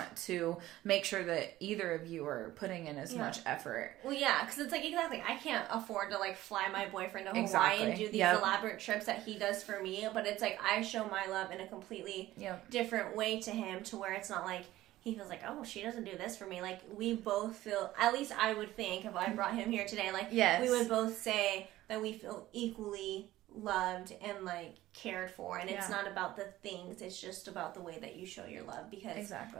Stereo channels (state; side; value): quieter; left; 15.6 dB